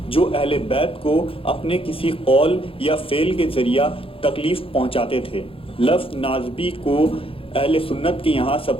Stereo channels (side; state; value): right; late; 0.27 ms